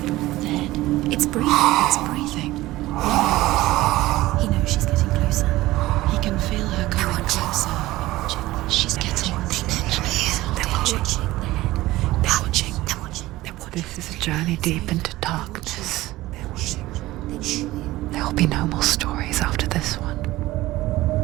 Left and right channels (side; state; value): left; quieter; 17.5 dB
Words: Dead. It's breathing. It's breathing. He knows she's getting closer. He can feel her coming closer. She's getting closer. They're watching. They're watching. They're watching. This is a journey deep into darkness. There will be no more stories after this one.